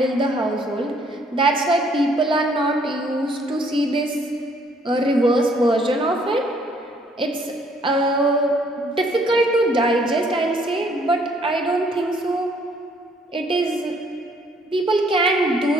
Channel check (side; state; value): both; normal; correlation 0.64